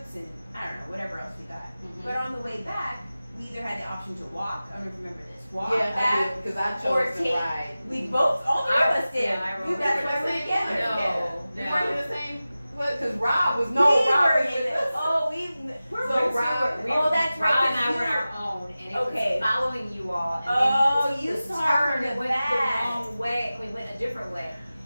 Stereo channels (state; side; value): inverted; both; correlation -0.95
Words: and I don't know whatever else we got. Mhm. But on the way back, we either had the option to walk. I don't know if you remember this. Walk Yeah, back. because I or chose to take- ride. We both, all three of us did. Yeah, I You remember. guys We were were the same together. No. We No. weren't in the same. What? Because Rob was We Rob were was in with it. us. Oh, we were So with Rob- you. Oh, that's right. Rob and 'cause I you were were- our own, and it Okay. was following you all. And Oh, then you the saw turn from the went back. the wrong way. We went a different way,